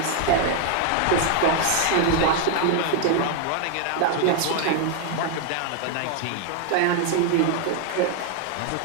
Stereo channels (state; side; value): different; both; correlation 0.01